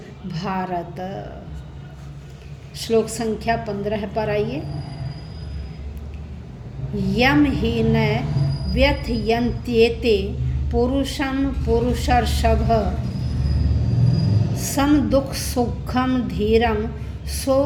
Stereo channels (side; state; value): both; identical; correlation 1.00